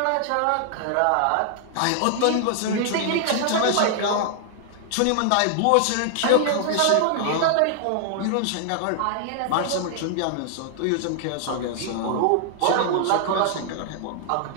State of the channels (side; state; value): both; different; correlation -0.01